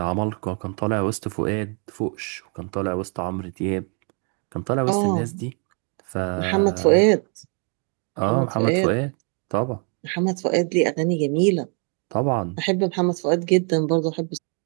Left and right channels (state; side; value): quieter; left; 39.8 dB